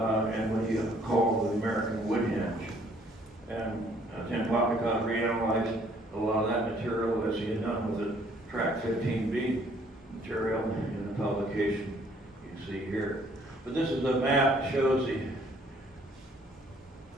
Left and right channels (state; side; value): normal; both; correlation 0.62